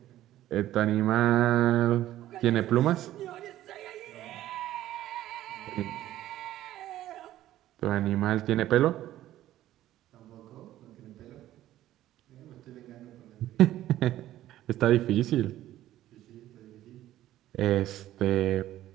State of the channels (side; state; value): left; quieter; 13.8 dB